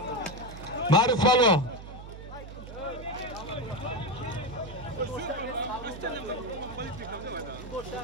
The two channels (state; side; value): noise; right; hum, 12 dB below the sound